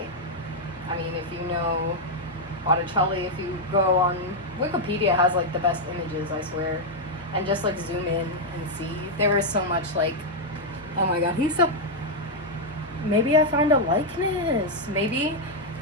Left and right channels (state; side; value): normal; both; correlation -0.01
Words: I mean, if you know Botticelli, if you go on Wikipedia, has like the best images, I swear, and just like zoom in and see, there is so much like, oh my god, he's so, maybe I find a likeness, maybe